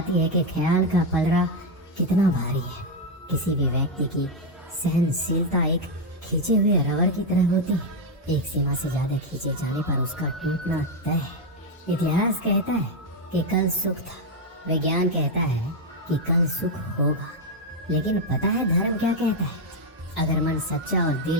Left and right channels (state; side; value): normal; both; correlation 0.04